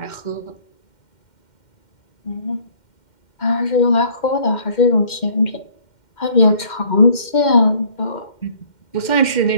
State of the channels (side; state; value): right; late; 2.1 ms